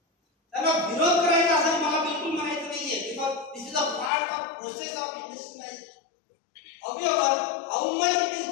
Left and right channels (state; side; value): drops out; right; at 4.1 s